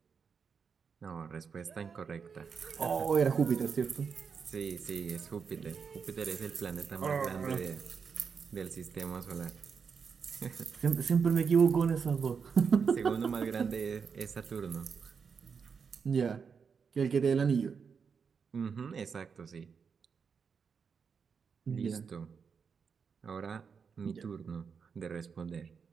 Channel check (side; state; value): left; quieter; 6.1 dB